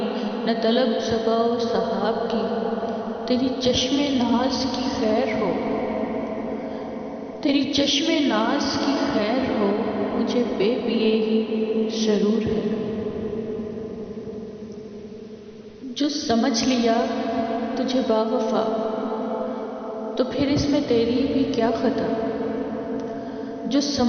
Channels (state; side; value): identical; both; correlation 1.00